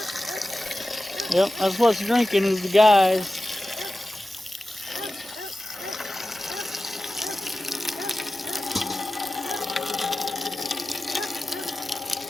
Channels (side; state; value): both; normal; correlation 0.95